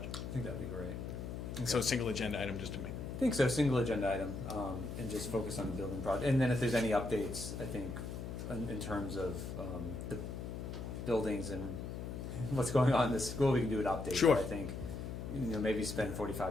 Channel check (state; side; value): noise; left; hum, 6 dB below the sound